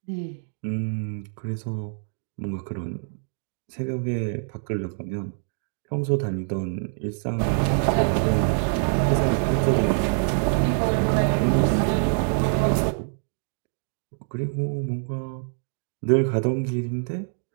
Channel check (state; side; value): silent; left; 61 dB below the other